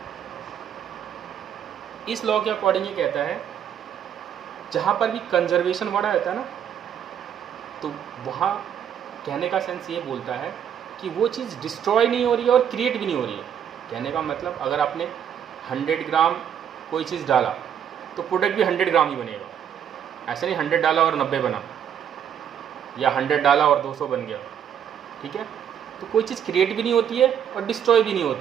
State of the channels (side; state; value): left; quieter; 8.9 dB